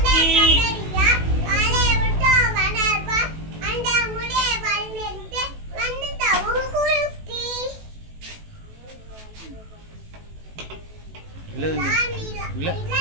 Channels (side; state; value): left; late; 18 ms